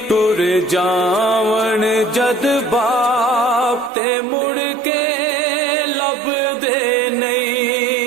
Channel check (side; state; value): left; drops out; at 3.9 s